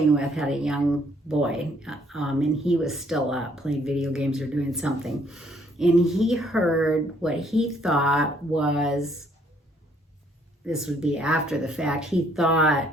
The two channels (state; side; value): normal; both; correlation 0.65